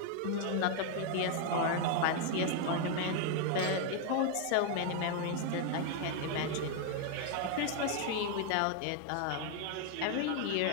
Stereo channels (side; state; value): both; different; correlation 0.00